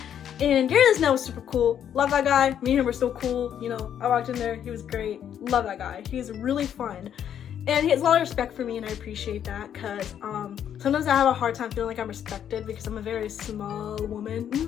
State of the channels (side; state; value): right; quieter; 9.4 dB